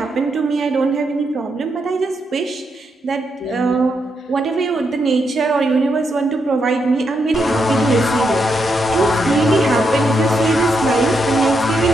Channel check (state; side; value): normal; both; correlation 0.81